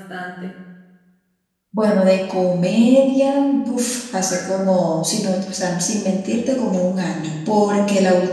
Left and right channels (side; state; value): both; identical; correlation 1.00